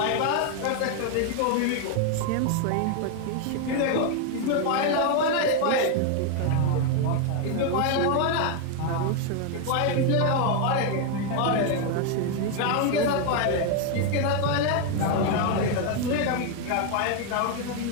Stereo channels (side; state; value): both; different; correlation 0.01